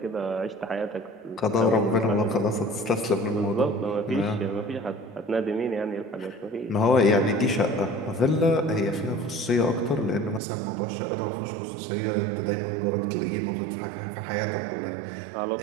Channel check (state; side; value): drops out; left; at 10.4 s